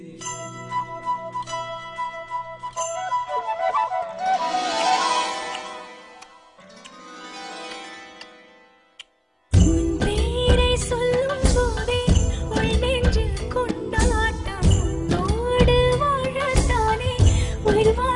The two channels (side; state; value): both; identical; correlation 1.00